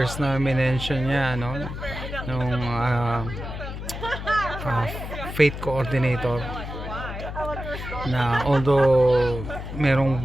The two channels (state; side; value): noise; left; hum, 8 dB below the sound